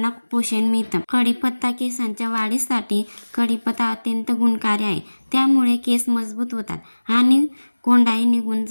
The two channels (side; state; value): both; inverted; correlation -1.00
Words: पोषण मिळतं. कढीपत्ता केसांच्या वाढीसाठी कढीपत्ता अत्यंत गुणकारी आहे. त्यामुळे केस मजबूत होतात आणि कोंडाही निघून